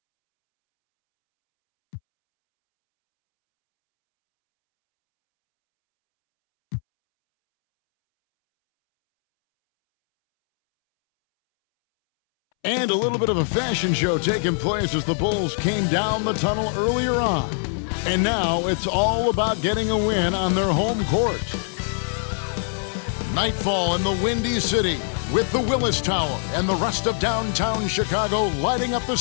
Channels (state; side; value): silent; right; 64 dB below the other